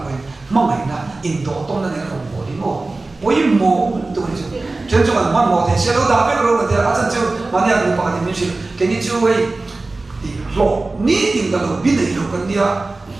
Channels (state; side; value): quieter; left; 3.3 dB